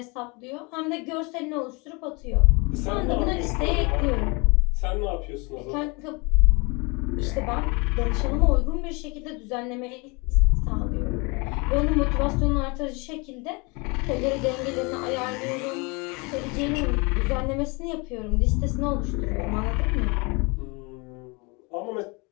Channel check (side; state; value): right; quieter; 28.9 dB